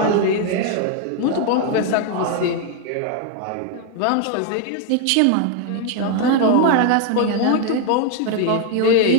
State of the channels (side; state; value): both; different; correlation 0.01